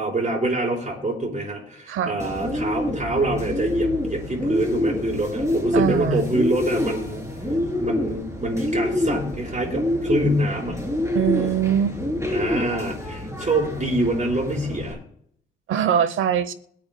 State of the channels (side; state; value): both; normal; correlation 0.54